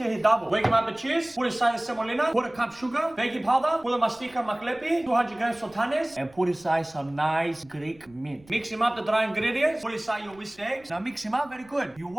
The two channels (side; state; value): right; noise; rumble, 27 dB below the sound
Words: he double. Wake him up with cheese, put inside the semolina, put a cup sugar, baking powder, put a mastika maklepi, 200 grams sultanes, and put inside some nice Greek mint. Mix him up the dry ingredients, put inside your whisked eggs. Now mix him up very good. You